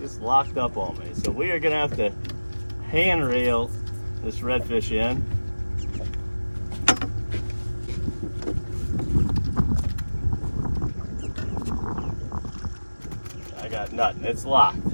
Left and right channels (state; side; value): inverted; both; correlation -1.00